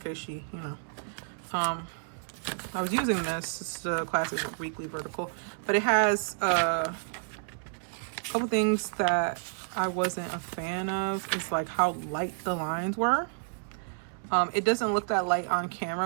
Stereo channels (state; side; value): silent; left; 58 dB below the other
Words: case she, you know. I was using this. It's the classic weekly vertical, but it has a couple things that I wasn't a fan of. It's like how light the lines were. It doesn't look that light on